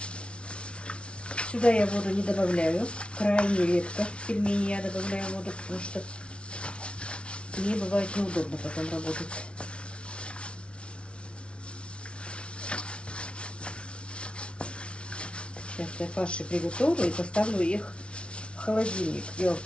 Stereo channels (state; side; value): late; right; 0.059 ms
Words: Сюда я воду не добавляю. Крайне редко в пельмени я добавляю воду, потому что мне бывает неудобно потом работать. Сейчас я фарши приготовлю и поставлю их в холодильник. Дело в